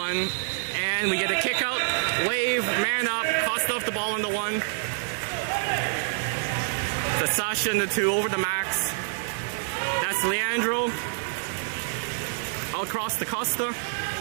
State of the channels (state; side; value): silent; left; 55 dB below the other